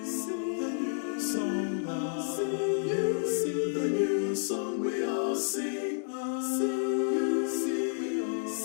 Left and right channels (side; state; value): right; silent; digital silence